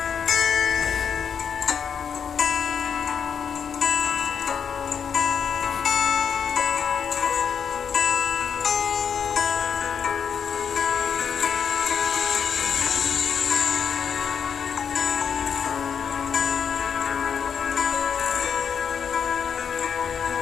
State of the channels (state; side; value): quieter; right; 7.2 dB